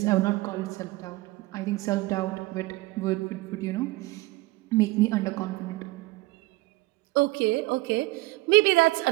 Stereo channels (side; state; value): left; quieter; 20.6 dB